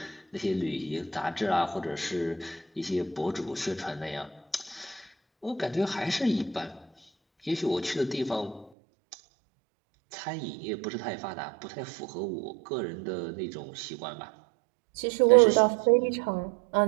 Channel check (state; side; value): drops out; left; at 8.7 s